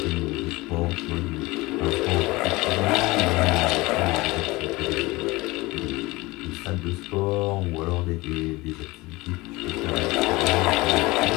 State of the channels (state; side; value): quieter; right; 21.7 dB